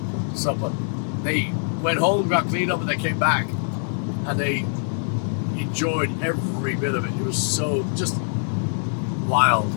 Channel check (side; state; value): right; silent; digital silence